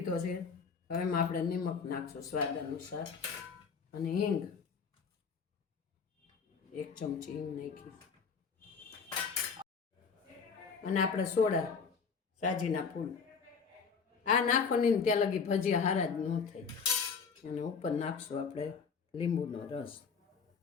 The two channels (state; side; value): quieter; right; 5.7 dB